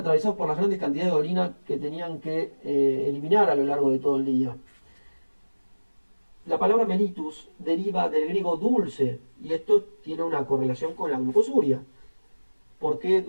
por las grandes cantidades de orina que tenían que eliminar a lo largo de todo el día. La palabra mellitus deriva del griego dulce, y esto tiene una correlación con la glucosuria. ¿Por qué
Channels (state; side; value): inverted; both; correlation -1.00